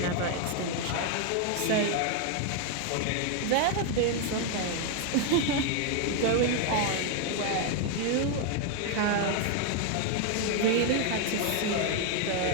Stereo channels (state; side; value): different; both; correlation 0.01